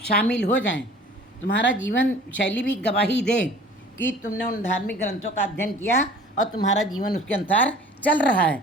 शामिल हो जाएं। तुम्हारा जीवन शैली भी गवाही दे कि तुमने उन धार्मिक ग्रंथों का अध्ययन किया और तुम्हारा जीवन उसके अनुसार चल रहा है।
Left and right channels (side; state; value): both; normal; correlation 0.47